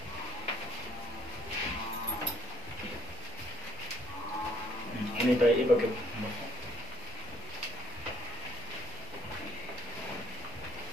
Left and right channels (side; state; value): both; normal; correlation 0.61